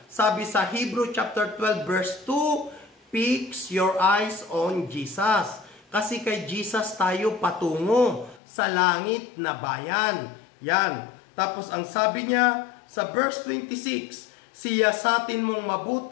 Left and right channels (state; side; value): drops out; right; at 8.4 s